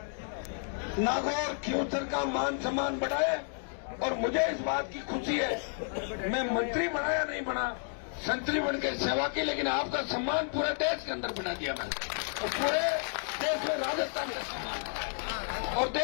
नागौर खियूंसर का मान सम्मान बढ़ाए। और मुझे इस बात की खुशी है, मैं मंत्री बना या नहीं बना, संतरी बन के सेवा की, लेकिन आपका सम्मान पूरे देश के अंदर बना दिया मैंने, और पूरे देश में राजस्थान का सम्मान। और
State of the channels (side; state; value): right; silent; 57 dB below the other